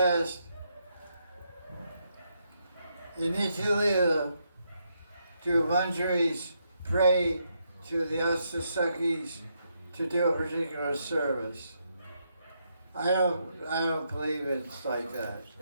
in Nitya do Manjaris pray to the Astasakis to do a particular service? I don't believe it's like that.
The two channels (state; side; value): inverted; both; correlation -0.79